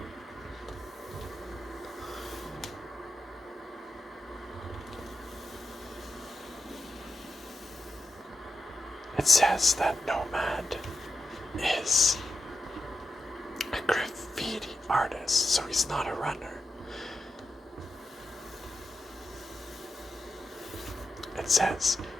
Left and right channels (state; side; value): normal; both; correlation 0.88